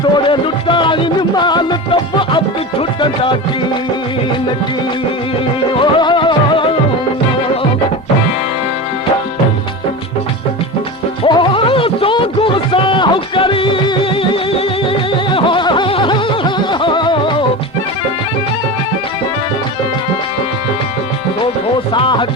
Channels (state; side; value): normal; both; correlation 0.26